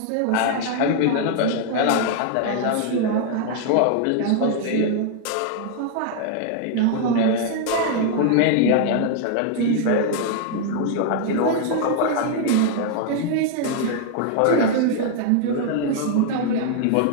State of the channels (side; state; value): both; different; correlation 0.00